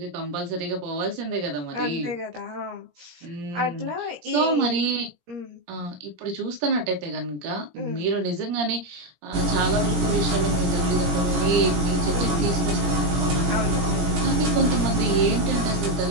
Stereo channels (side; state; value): left; late; 17 ms